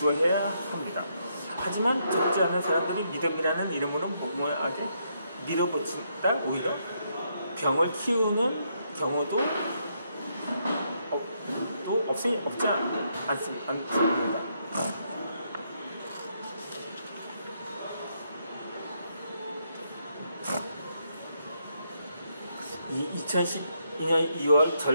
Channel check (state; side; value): inverted; both; correlation -0.76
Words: 합니다. 하지만 적지 않은 사람들이 믿음이라는 이름으로 무모하게 밀어붙인다 오히려 병을 키우는 경우도 없지 않습니다. 2012년 2월